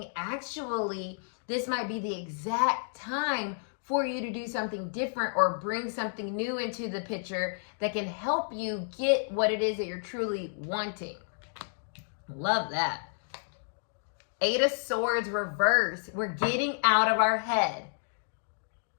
actually, this might be the exact time for you to do something different or bring something new into the picture that can help you get what it is that you're truly wanting. Love that. Eight of Swords reverse. We're getting out of our head.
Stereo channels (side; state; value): right; silent; digital silence